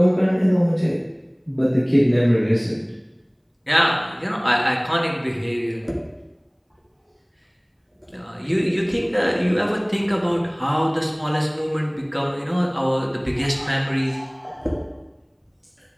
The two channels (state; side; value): identical; both; correlation 1.00